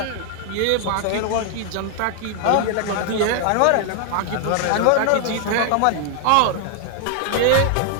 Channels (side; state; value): both; different; correlation 0.00